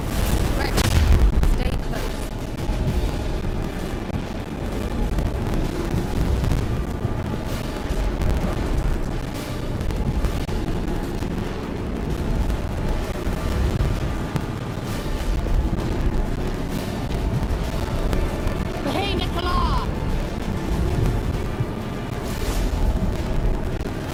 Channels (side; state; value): both; identical; correlation 1.00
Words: Rex, stay close.